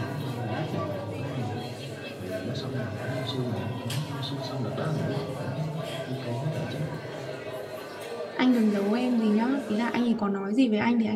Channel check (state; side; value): identical; both; correlation 1.00